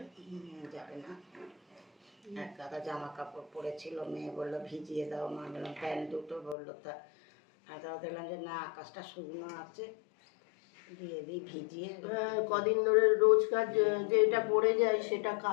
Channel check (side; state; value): right; drops out; at 6.6 s